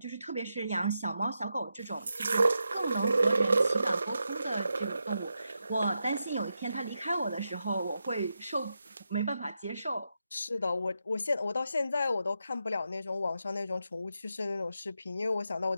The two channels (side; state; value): both; inverted; correlation -0.87